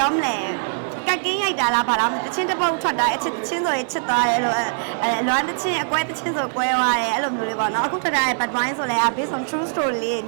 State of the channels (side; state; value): left; silent; digital silence